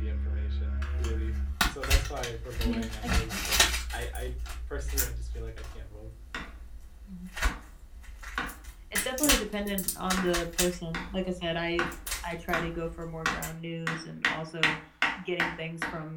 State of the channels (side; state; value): both; identical; correlation 1.00